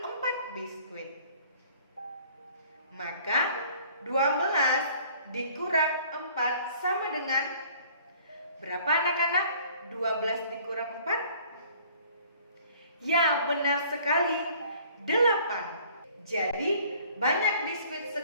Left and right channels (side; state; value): both; inverted; correlation -0.54